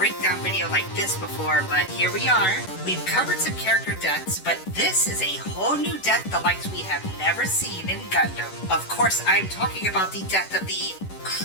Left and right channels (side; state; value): right; late; 11 ms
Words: video like this before, but here we are. We've covered some character deaths, but this is a whole new death the likes we have never seen in Gundam. Of course, I'm talking about the death of the